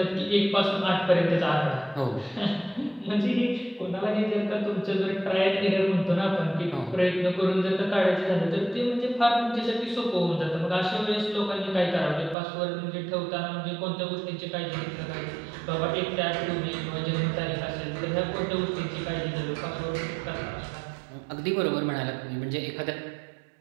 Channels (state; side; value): drops out; left; at 12.4 s